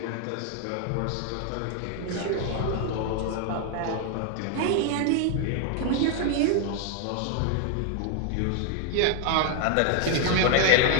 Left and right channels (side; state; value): both; different; correlation 0.00